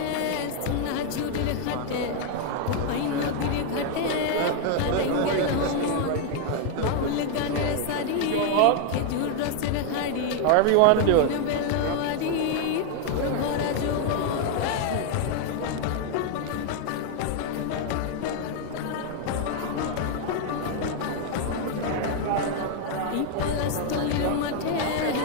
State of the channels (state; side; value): different; both; correlation 0.00